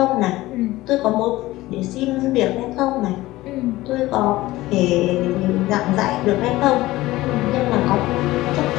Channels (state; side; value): quieter; right; 17.8 dB